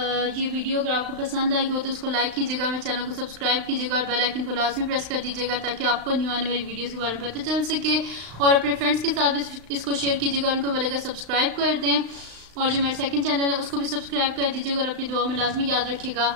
ये वीडियो अगर आपको पसंद आई हो तो उसको लाइक कीजिएगा, मेरे चैनल को सब्सक्राइब कीजिएगा, और बेल आइकन को लाजमी प्रेस कर दीजिएगा ताकि आपको न्यू आने वाली वीडियोस के बारे में पता चल सके। और अपने फ्रेंड्स के साथ भी इसको शेयर कीजिएगा, उनको बोलेगा सब्सक्राइब कर दें, और जो मेरा सेकंड चैनल है उसको भी सब्सक्राइब कर दीजिएगा, और अपनी दुआ में लाजमी याद रखिएगा।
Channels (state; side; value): late; left; 36 ms